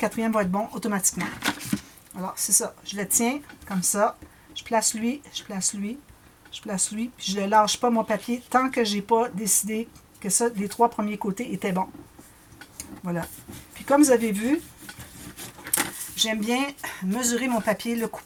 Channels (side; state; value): both; identical; correlation 1.00